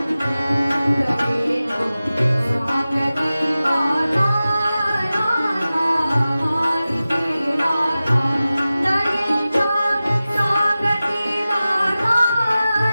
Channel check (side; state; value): both; inverted; correlation -0.96